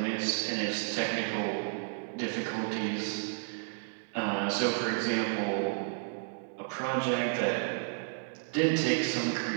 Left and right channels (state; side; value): silent; left; digital silence